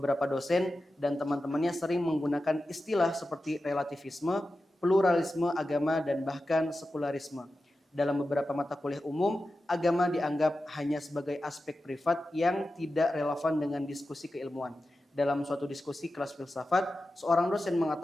dosen dan teman-temannya sering menggunakan istilah seperti relativisme, pluralisme agama, dan bahkan sekularisme. Dalam beberapa mata kuliah umum, agama dianggap hanya sebagai aspek privat yang tidak relevan dengan diskusi keilmuan. Dalam suatu diskusi kelas filsafat, seorang dosen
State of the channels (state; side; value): normal; both; correlation 0.92